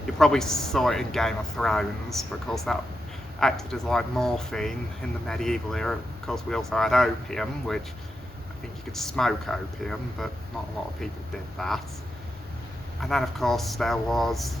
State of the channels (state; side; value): normal; both; correlation 0.87